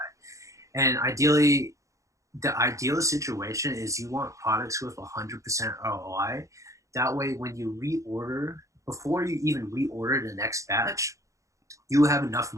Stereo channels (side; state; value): left; late; 0.15 ms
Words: And ideally, the ideal situation is you want products with 100% ROI. That way, when you reorder, before you even reorder the next batch, you have enough